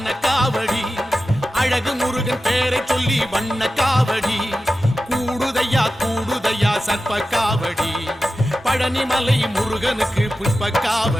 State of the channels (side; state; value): both; normal; correlation 0.93